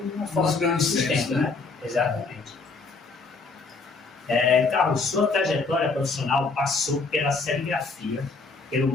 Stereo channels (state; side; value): quieter; right; 4.1 dB